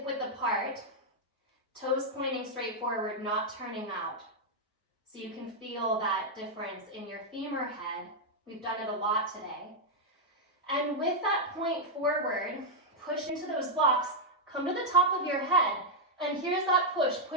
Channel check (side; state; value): both; normal; correlation -0.04